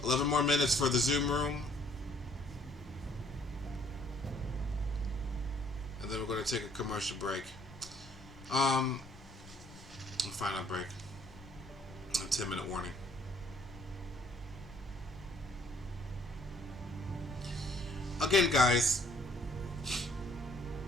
11 more minutes for the Zoom room. And then we're going to take a commercial break. A final break. A 10-minute warning. Again, guys,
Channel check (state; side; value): normal; both; correlation 0.62